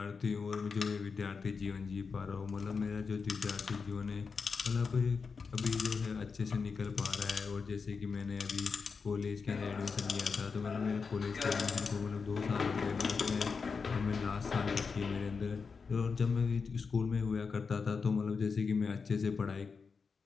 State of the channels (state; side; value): quieter; right; 5.2 dB